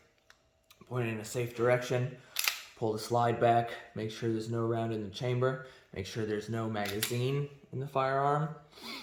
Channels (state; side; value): identical; both; correlation 1.00